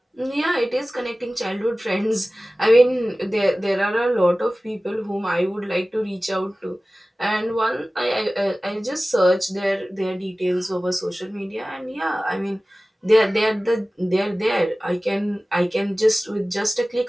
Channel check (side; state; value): both; normal; correlation 0.97